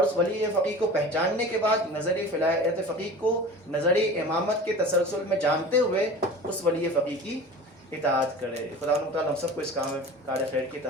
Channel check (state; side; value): normal; both; correlation 0.37